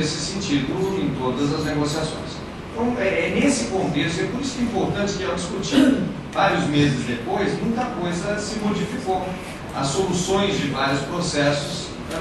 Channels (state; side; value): identical; both; correlation 1.00